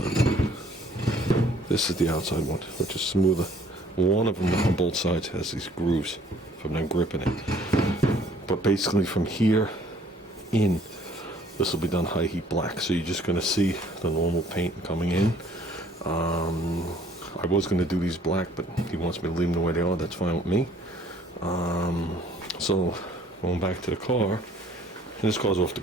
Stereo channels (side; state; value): both; normal; correlation 0.58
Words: one. This is the outside one, which is smoother. One of them on both sides has these grooves from them gripping it. But basically from here in, this will be done high heat black. So you're just going to see the normal paint coming in. I was going to do these black, but he wants me to leave them the way they are. That's fine with me. So going back to the car, and this car's off the